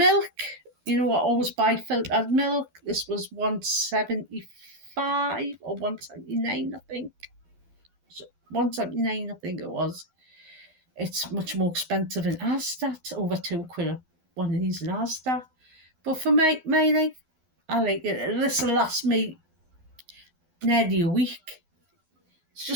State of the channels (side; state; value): left; late; 12 ms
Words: You know, I always buy filtered milk. This was £1.75 or £1.79, I think. So £1.79, I think it was. It's much more expensive in Asda. It's over £2 one of these in Asda. But for my life, I like it. This will last me nearly a week. It's